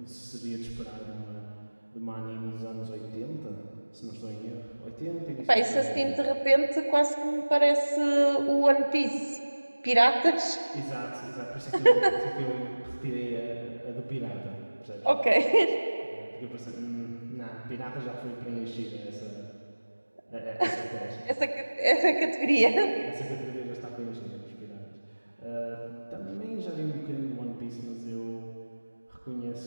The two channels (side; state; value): both; inverted; correlation -1.00